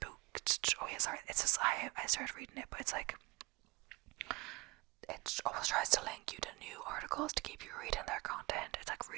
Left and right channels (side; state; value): left; quieter; 24.4 dB